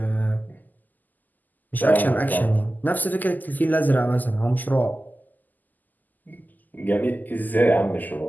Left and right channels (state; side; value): late; right; 0.084 ms